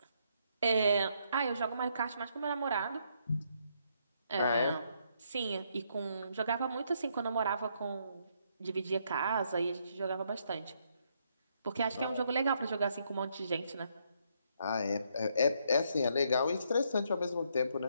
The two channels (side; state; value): both; inverted; correlation -0.73